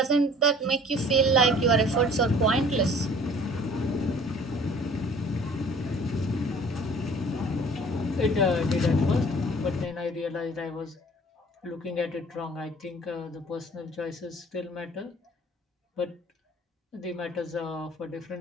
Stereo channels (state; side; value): normal; both; correlation 0.51